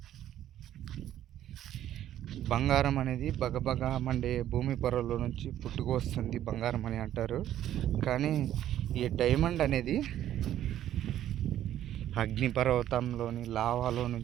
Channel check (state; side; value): quieter; left; 11.8 dB